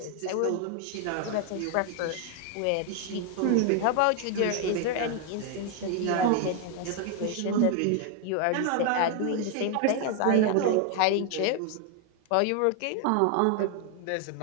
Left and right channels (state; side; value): different; both; correlation 0.01